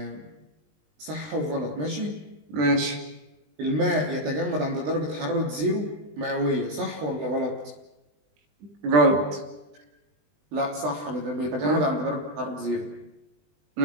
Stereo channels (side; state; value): left; late; 20 ms